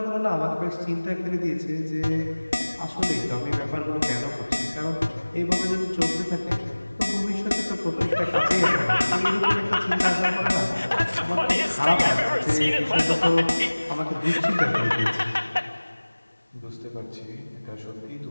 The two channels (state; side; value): inverted; both; correlation -1.00